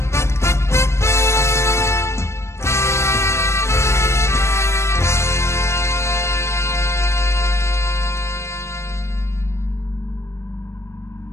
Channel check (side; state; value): right; late; 0.13 ms